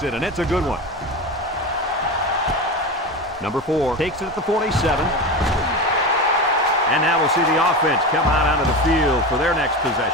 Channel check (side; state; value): both; normal; correlation 0.24